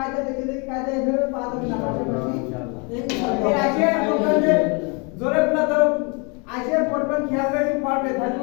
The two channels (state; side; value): quieter; right; 32.8 dB